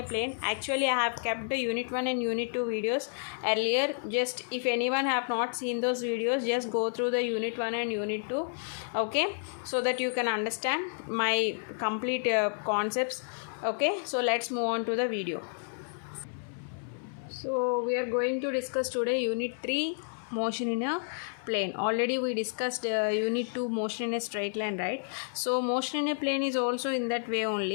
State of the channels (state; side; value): silent; right; 57 dB below the other